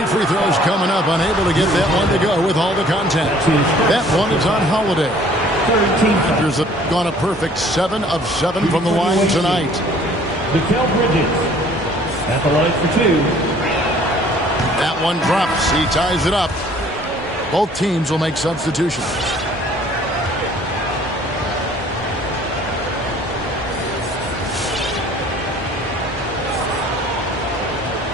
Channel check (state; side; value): normal; both; correlation 0.55